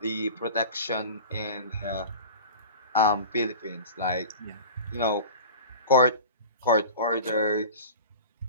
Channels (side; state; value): both; inverted; correlation -0.35